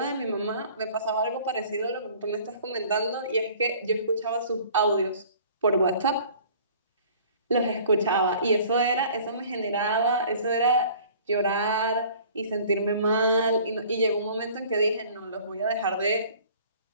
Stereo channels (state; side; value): inverted; both; correlation -0.50